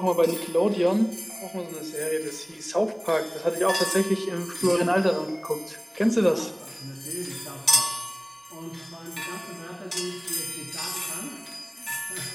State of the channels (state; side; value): identical; both; correlation 1.00